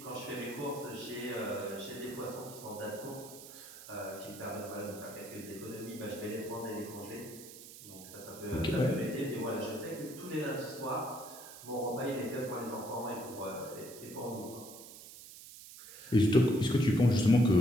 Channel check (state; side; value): noise; right; hiss, 15 dB below the sound